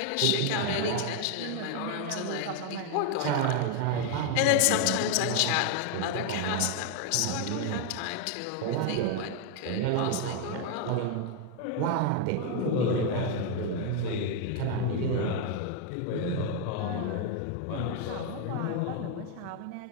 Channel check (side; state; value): both; different; correlation 0.01